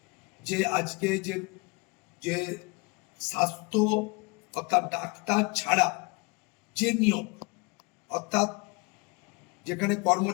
যে আজকে যে স্বাস্থ্য অর্থাৎ ডাক্তার ছাড়া যে নিয়োগ, অর্থাৎ যেখানে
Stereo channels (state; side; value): quieter; right; 29.4 dB